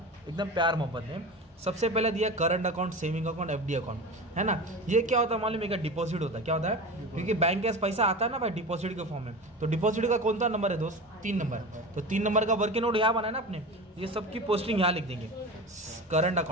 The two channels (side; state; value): both; normal; correlation 0.30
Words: एकदम प्यार मोहब्बत में। सबसे पहले दिया current account, saving account, FD account, है ना। ये क्या होता है मालूम है? डिपॉजिट होता है। क्या होता है? क्योंकि बैंक के पास पैसा आता है ना भाई, डिपॉजिट के फॉर्म में। तो डिपॉजिट का कौन सा नंबर है दोस्त? 3 नंबर। तो 3 नंबर का वर्किंग नोट यहाँ बनाया ना अपने। ये सबकी पोस्टिंग यहाँ लिख देंगे। करंट